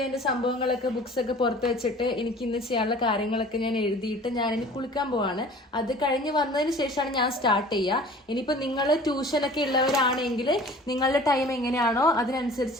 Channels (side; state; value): both; normal; correlation 0.46